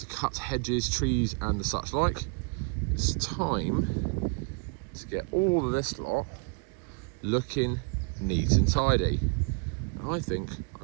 cut hedges, trees and the such like. It's time to get all of this lot looking neat and tidy. I think I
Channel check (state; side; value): quieter; left; 33.4 dB